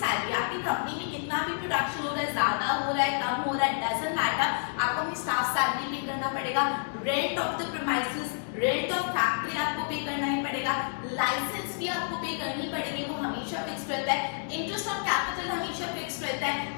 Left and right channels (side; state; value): right; silent; digital silence